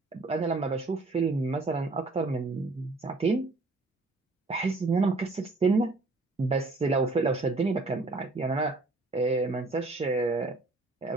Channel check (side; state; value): left; quieter; 3.3 dB